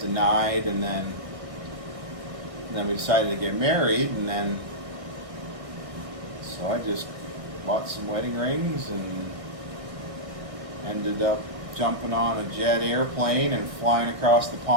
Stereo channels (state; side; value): late; left; 1.6 ms